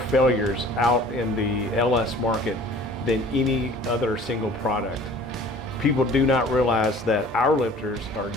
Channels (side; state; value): both; normal; correlation 0.48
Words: out in the LS market than any other single product. People do not realize that our lifters are